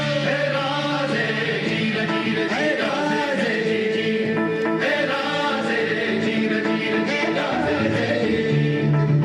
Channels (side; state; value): both; identical; correlation 1.00